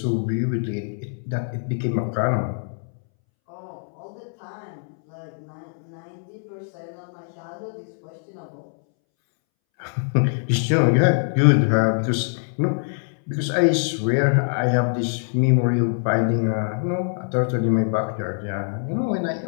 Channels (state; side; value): silent; right; 63 dB below the other